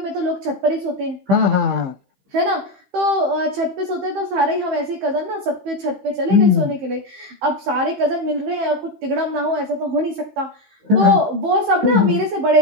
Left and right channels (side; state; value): left; late; 15 ms